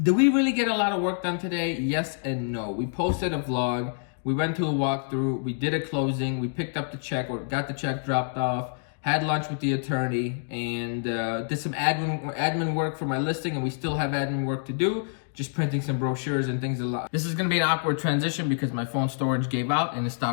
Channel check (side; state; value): right; silent; digital silence